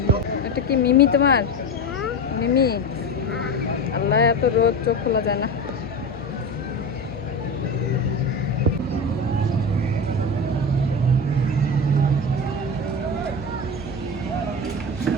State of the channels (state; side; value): noise; left; hum, 15 dB below the sound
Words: এটা কি মিমি তোমার? মিমি। আল্লাহ, এত রোদ চোখ খোলা যায় না।